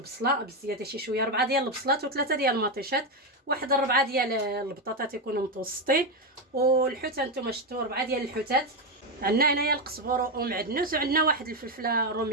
بزياده شي شويه، 4 ديال البصلات و3 ديال المطيشات، واحد 4 ديال البطاطات يكونوا متوسطين. والحوت انتم شفتوا 4 ديال الحوتات. عندنا هنايا القزبر ومعدنوس، وعندنا واحد الفلفله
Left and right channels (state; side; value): normal; both; correlation 0.08